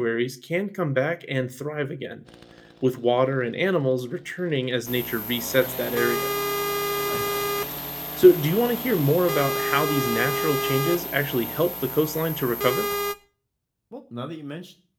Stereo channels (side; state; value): both; identical; correlation 1.00